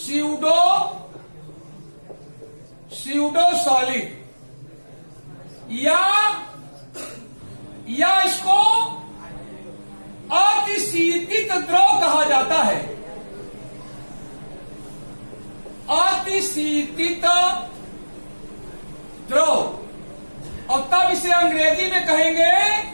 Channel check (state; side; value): inverted; both; correlation -1.00